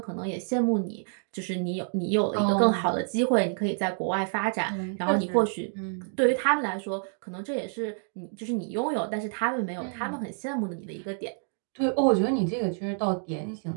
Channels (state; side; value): silent; left; 59 dB below the other